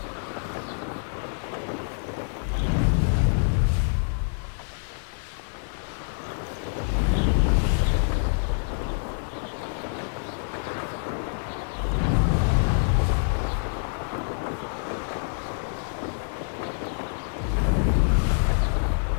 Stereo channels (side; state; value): right; silent; 61 dB below the other